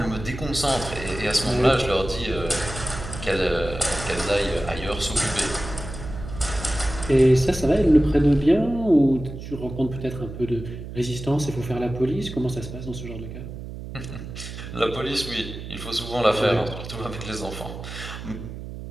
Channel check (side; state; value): right; noise; hum, 10 dB below the sound